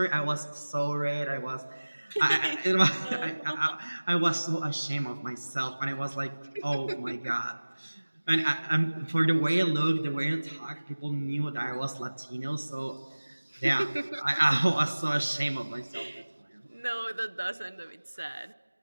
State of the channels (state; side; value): inverted; both; correlation -1.00